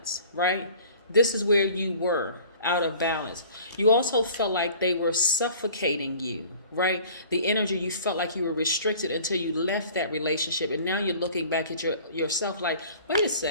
right? This is where you were, out of balance. You also felt like they were suffocating you, right? The energy, you felt like you were restricted until you left that relationship. And now you're looking back at yourself like, wait a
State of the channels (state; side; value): inverted; both; correlation -0.48